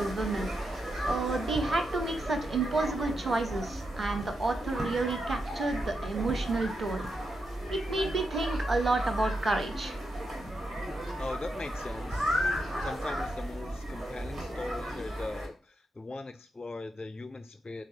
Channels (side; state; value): both; normal; correlation 0.85